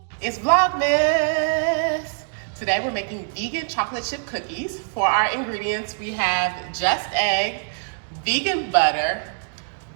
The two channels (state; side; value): silent; left; digital silence